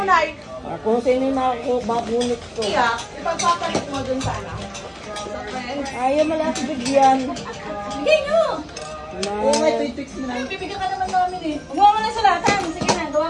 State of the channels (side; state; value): both; identical; correlation 1.00